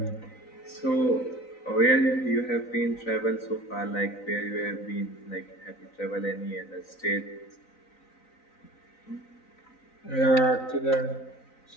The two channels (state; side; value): late; right; 3.9 ms